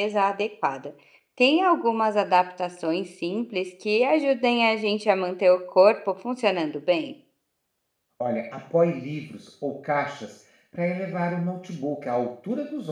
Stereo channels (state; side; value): identical; both; correlation 1.00